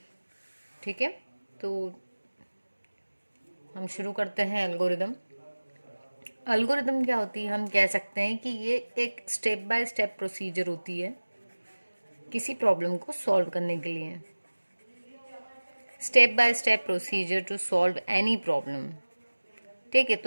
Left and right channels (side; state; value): both; inverted; correlation -1.00